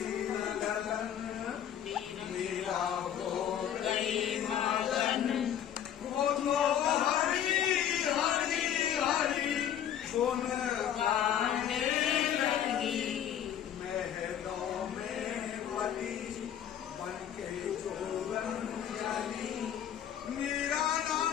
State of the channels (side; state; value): right; quieter; 9.8 dB